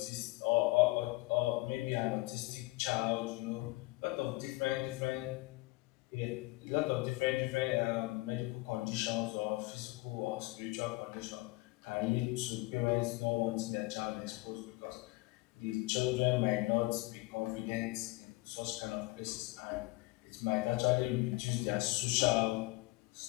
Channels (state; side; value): quieter; right; 22.3 dB